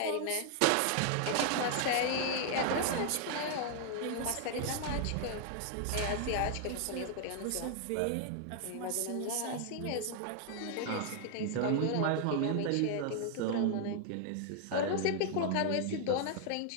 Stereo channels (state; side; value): different; both; correlation 0.00